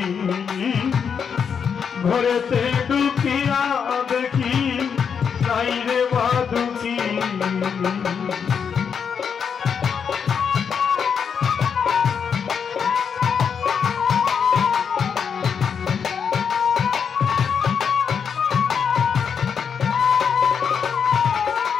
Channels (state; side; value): quieter; right; 6.9 dB